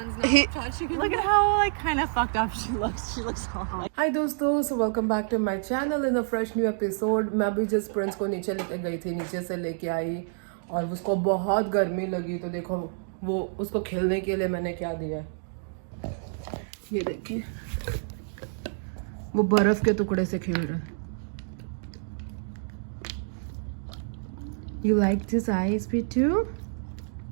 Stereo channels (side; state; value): left; silent; digital silence